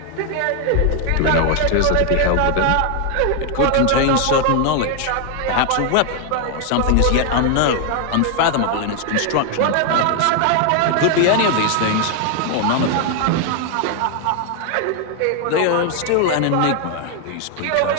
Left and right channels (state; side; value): different; both; correlation 0.00